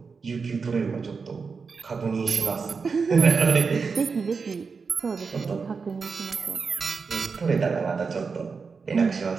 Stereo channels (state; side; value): quieter; left; 5.1 dB